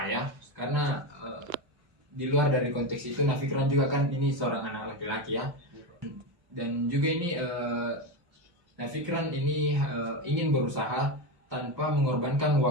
ayah, karena di luar dari konteks itu Nafikran juga kan ini seorang anak laki-laki ya, dan juga ini Nafikran ini ingin berusaha tanpa mengorbankan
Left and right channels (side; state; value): left; late; 1.1 ms